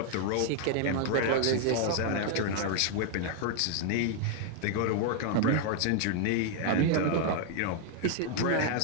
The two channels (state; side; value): different; both; correlation 0.00